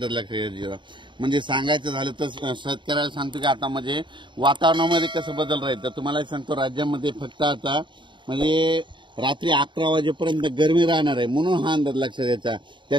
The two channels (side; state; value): left; late; 0.23 ms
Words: लक्षात घ्यायचा। म्हणजे सांगायचं झालं तर शेतकऱ्याला सांगतो की आता म्हणजे वातावरणामध्ये कसं बदल राहील, तर तुम्हाला सांगतो राज्यामध्ये फक्त आता म्हणजे रात्री 11 वाजेपर्यंत गरमी राहणार आहे, म्हणून हा अंदाज लक्षात घ्यायचा।